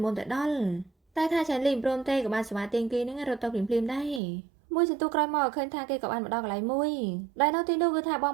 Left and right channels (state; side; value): drops out; left; at 4.2 s